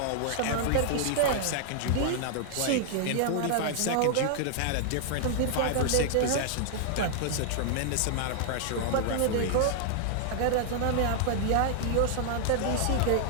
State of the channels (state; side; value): different; both; correlation -0.01